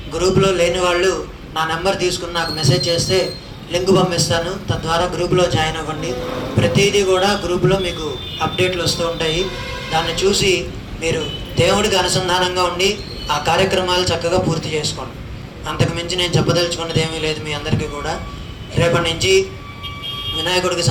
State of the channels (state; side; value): identical; both; correlation 1.00